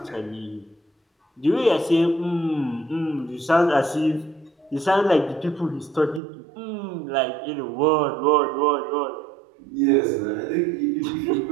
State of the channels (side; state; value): left; drops out; at 6.2 s